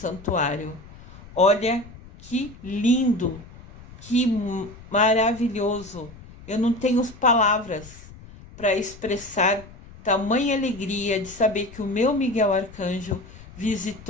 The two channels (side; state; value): left; noise; rumble, 19 dB below the sound